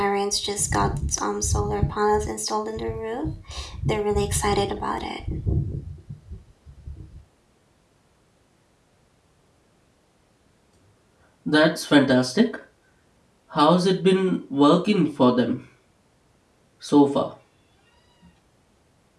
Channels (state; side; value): identical; both; correlation 1.00